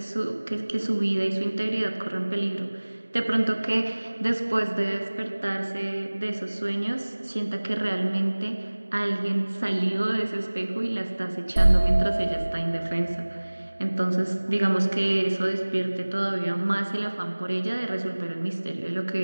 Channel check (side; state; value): both; inverted; correlation -1.00